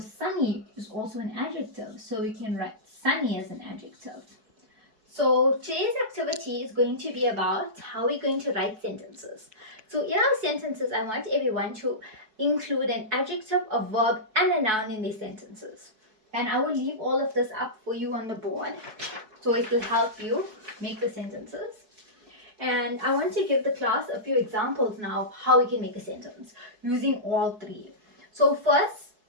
is also an adjective. So we can write sunny as an adjective. So today's activity is going to be about how we're going to write sentences. So in our sentences, I want everyone to include an adjective, a verb, and a noun in their sentences. And I will leave all of this up for you on the board, so it will help you make the sentences. And I want to give the class a few examples now of how we can make a sentence using all three. So first,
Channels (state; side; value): late; left; 4.6 ms